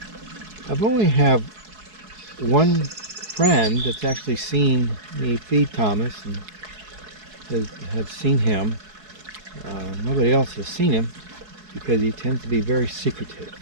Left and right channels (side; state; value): left; late; 4.7 ms